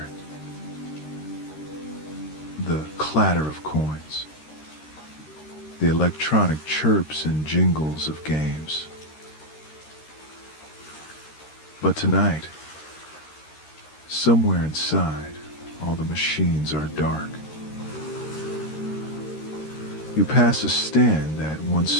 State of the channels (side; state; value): right; late; 13 ms